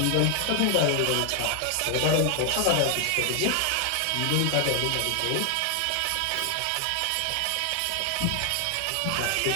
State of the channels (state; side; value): different; both; correlation 0.00